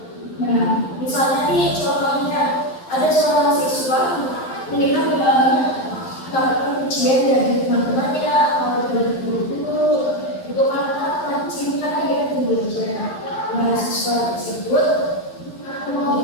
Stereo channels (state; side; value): late; right; 11 ms